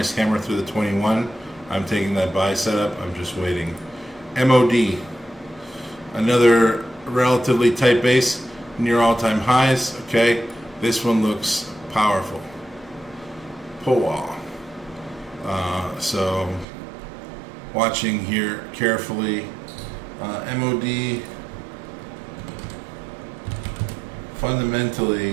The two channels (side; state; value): left; drops out; at 16.7 s